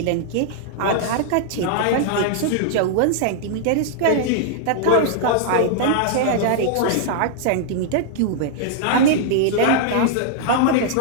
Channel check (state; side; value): different; both; correlation -0.01